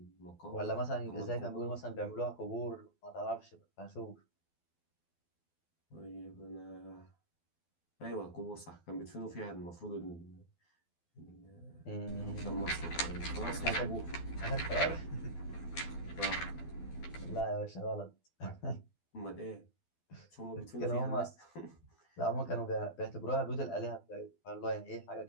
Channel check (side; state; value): right; late; 12 ms